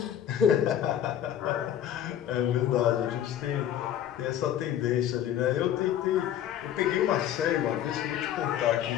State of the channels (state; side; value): quieter; right; 10.6 dB